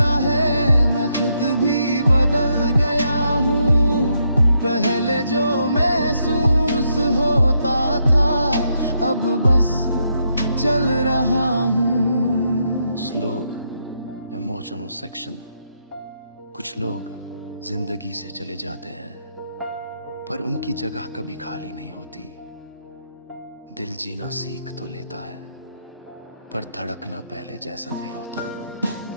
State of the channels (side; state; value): both; inverted; correlation -0.78